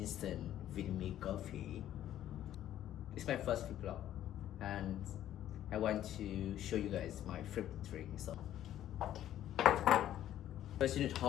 vitamin coffee? It's my first vlog and I want to show you guys my favorite drink. So first you need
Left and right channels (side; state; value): right; quieter; 12.0 dB